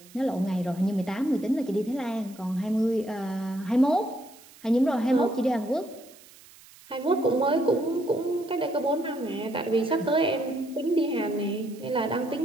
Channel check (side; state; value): right; noise; hiss, 23 dB below the sound